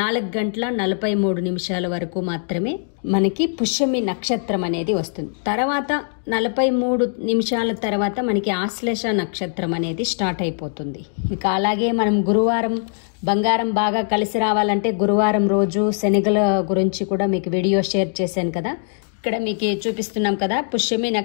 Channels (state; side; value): silent; right; digital silence